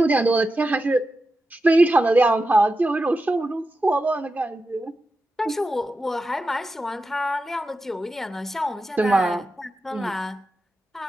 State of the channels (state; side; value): normal; both; correlation 0.90